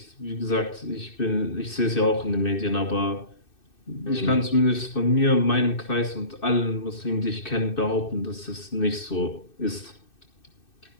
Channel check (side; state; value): right; late; 2.6 ms